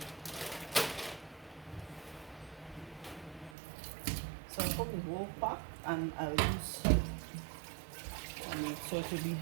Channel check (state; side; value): drops out; left; at 3.6 s